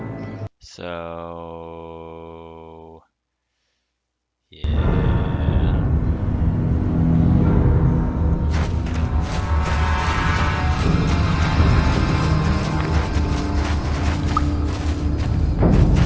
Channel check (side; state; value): both; identical; correlation 1.00